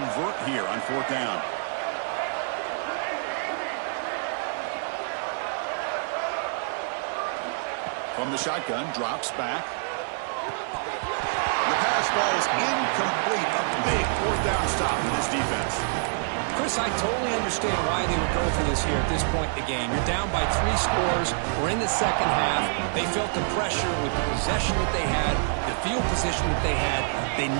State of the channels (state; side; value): silent; left; 58 dB below the other